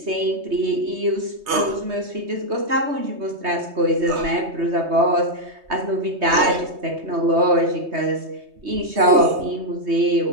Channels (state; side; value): late; left; 3.2 ms